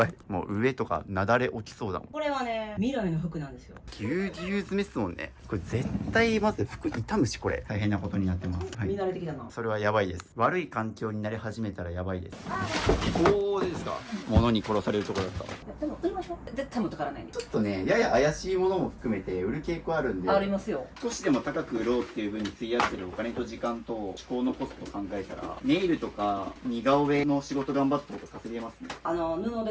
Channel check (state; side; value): identical; both; correlation 1.00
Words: い。もう上とかなだれ起きそうだもん。これはね、未来の服なんですよ。ぎゅうぎゅう詰めっすもんね。これ絶対まず服傷むし、これ。大変なことになってます。はい。見慣れてきたな。それはやばいです。悪い環境になり始めたらやばいです。おー、ですか。物に殺されるところだった。でも売りましょう。絶対持ってからないね。ちょっとね、やや怪しいものも含めて売る傾向あるんで。ありますよ。少しでも高く売ろうっていう風に費やしてるお金と時間と思考のコストを考えたら、ネイルとか似顔絵の仕事頑張った方が稼げますね。布で